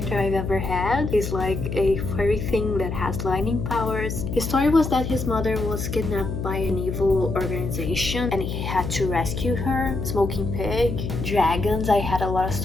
I've ever had. He's like a furry thing that has lightning powers. His story was that his mother was kidnapped by an evil organization and he had to rescue her. Smoking pig, dragons. I had a lot of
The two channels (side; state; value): left; noise; hum, 4 dB below the sound